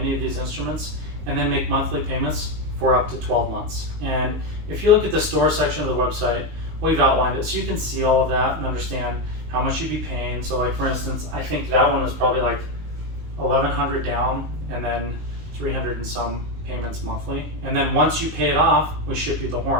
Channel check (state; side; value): late; left; 19 ms